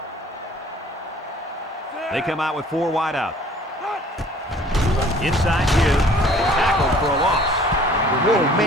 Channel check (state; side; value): normal; both; correlation 0.53